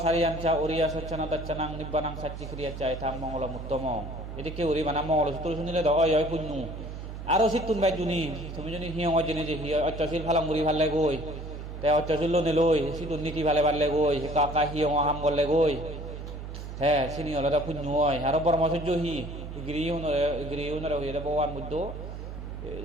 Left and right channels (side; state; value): right; noise; hum, 9 dB below the sound